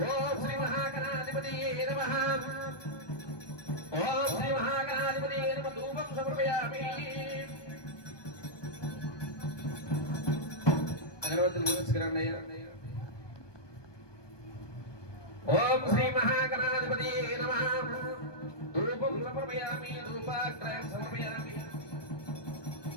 ఓం శ్రీ మహాగణాధిపతియే నమః ఓం శ్రీ మహాగణాధిపతియే నమః ధూపం సమర్పయామి అగరవత్తులు పూజించుకురండి ఓం శ్రీ మహాగణాధిపతియే నమః ధూపం సమర్పయామి ధూపాగ్రయం సమర్పయామి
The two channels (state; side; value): late; right; 1.2 ms